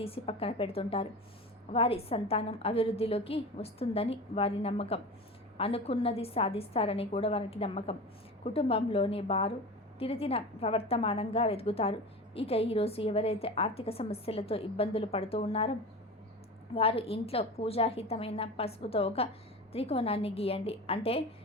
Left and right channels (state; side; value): normal; both; correlation 0.31